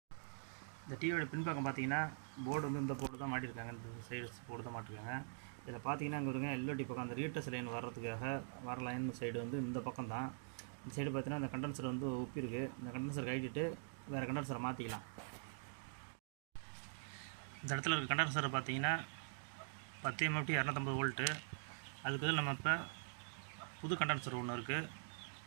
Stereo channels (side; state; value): left; silent; digital silence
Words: இந்த டிவியோட பின்பக்கம் பார்த்தீங்கன்னா போர்டு வந்து இந்த போர்டு தான் மாட்டியிருக்காங்க, இந்த சைடு போர்டு தான் மாட்டிருக்காங்க. இதில் பார்த்தீங்கன்னா இங்கே வருங்க எல்ஓடி பக்கம் அந்த ரீட்டர்ஸ் லைன் வர்றதுக்காக வர லைன் சைடு வந்து இந்த பக்கம் தான். இந்த சைடு பார்த்தீங்கன்னா இந்த கண்டென்சர் வந்து ஒப்பிருக்கு. இந்த கண்டென்சர் கழிச்சிட்டு வேறு கண்டென்சரை மாற்றிக்கலாம். இந்த இடத்துல இருக்க கண்டென்சரை பார்த்தீங்கன்னா 10 MFT 250 வோல்ட்டு. அதுக்கு பதில் நம்ம இப்போ புது கண்டென்சர் ஒன்று இருக்குது.